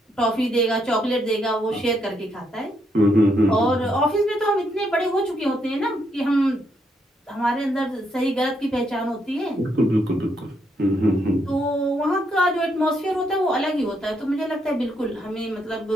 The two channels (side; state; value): both; normal; correlation 0.76